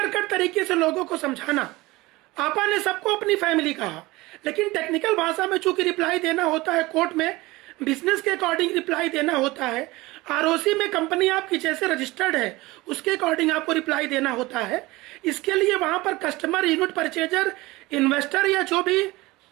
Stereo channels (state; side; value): quieter; left; 20.8 dB